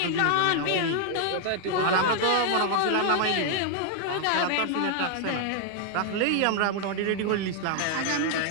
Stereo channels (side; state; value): both; different; correlation 0.00